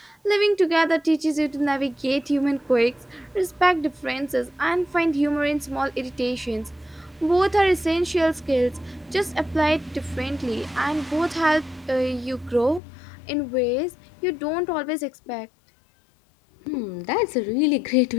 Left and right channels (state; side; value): drops out; right; at 12.8 s